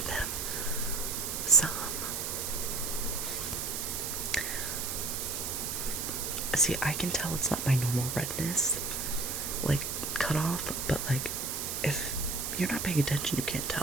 them some. See, I can tell it's not my normal redness, like cut off, but like if you're not paying attention, you can't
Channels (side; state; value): right; noise; hiss, 3 dB below the sound